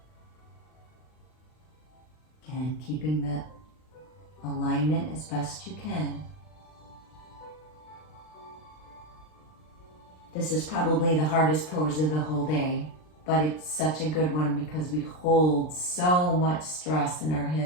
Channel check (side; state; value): right; late; 39 ms